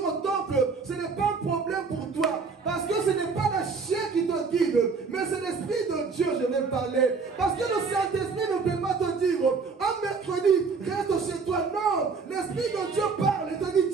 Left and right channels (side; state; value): left; quieter; 4.9 dB